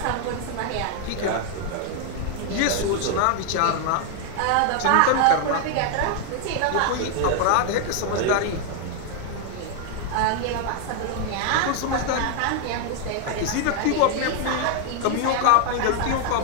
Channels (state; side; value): different; both; correlation 0.00